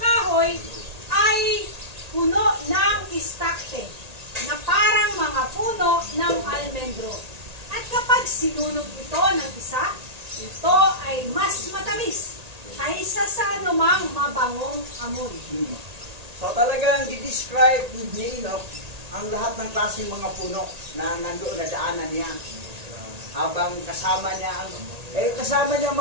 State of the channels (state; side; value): late; left; 1.8 ms